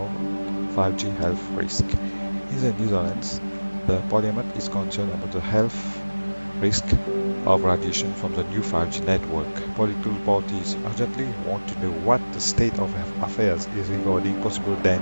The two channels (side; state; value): both; inverted; correlation -1.00